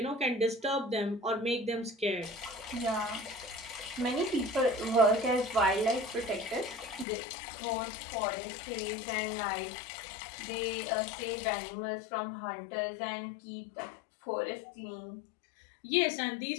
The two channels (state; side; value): drops out; right; at 7.1 s